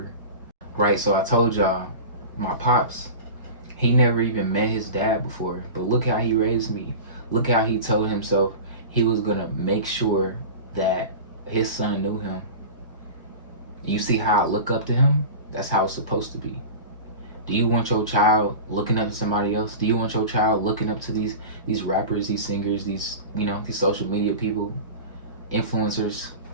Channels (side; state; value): both; inverted; correlation -0.32